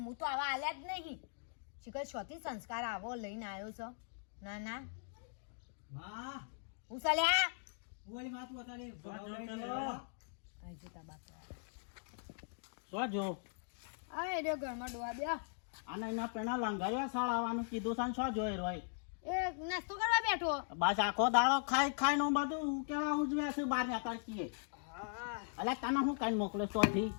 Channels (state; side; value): silent; right; digital silence